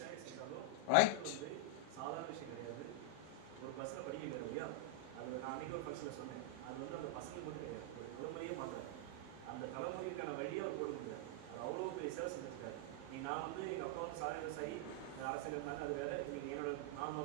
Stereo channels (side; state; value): both; different; correlation -0.01